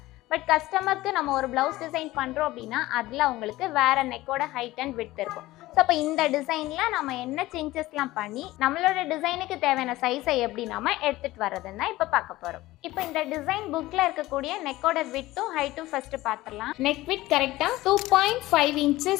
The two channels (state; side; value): quieter; right; 17.7 dB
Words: பட் கஸ்டமருக்கு நம்ம ஒரு ப்ளவுஸ் டிசைன் பண்ணுறோம் அப்படின்னா அதில் அவங்களுக்கு வேறு நெக்கோட ஹைட் அண்ட் விட்த் இருக்கும். ஸோ அப்போ இந்த டிசைனில் நம்ம என்ன சேஞ்சஸ்லாம் பண்ணி நம்மளோட டிசைனுக்கு தேவையான சைஸை எப்படி நம்ம எடுத்துகிட்டு வர்றதுன்னு தான் இப்போ பார்க்க போகிறோம். இப்போ இந்த டிசைன் புக்கில் இருக்கக்கூடிய நெக்கோட விட்த்தும் ஹைட்டும் ஃபஸ்ட்டு பார்த்துடலாம். நெக் விட்த் கரெக்டாக 2.5